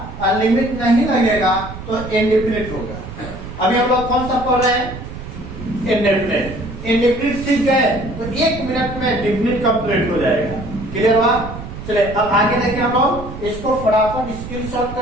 और लिमिट नहीं लगेगा तो इंडेफिनिट होगा। अभी हम लोग कौन सा पढ़ रहे हैं? इंडेफिनिट। इंडेफिनिट सीख गए तो 1 मिनट में डिफिनिट कंप्लीट हो जाएगा। क्लियर हुआ? चले अब आगे देखिए, हम लोग इसको फटाफट स्क्रीनशॉट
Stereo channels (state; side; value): noise; right; rumble, 11 dB below the sound